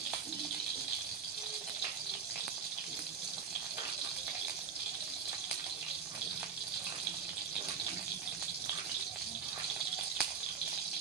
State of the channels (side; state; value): left; quieter; 6.3 dB